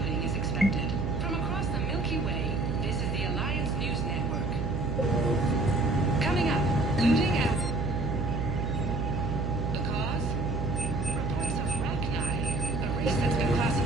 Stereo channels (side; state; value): right; noise; hum, 2 dB below the sound